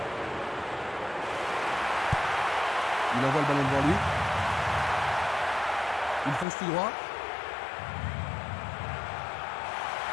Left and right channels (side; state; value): right; drops out; at 6.5 s